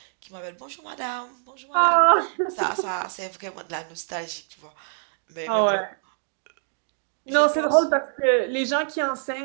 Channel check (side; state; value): left; silent; digital silence